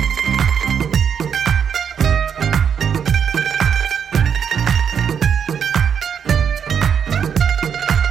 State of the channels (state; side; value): quieter; left; 7.6 dB